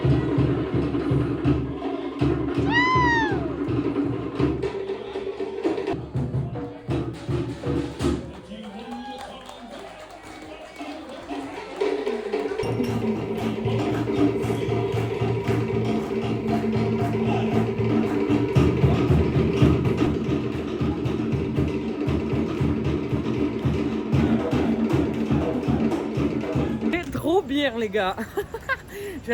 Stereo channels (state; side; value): identical; both; correlation 1.00